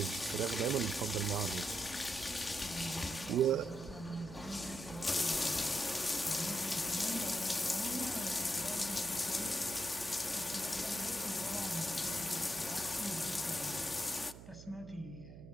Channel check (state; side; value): noise; right; hum, 15 dB below the sound